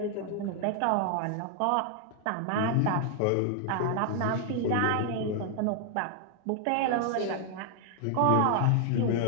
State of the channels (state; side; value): different; both; correlation 0.00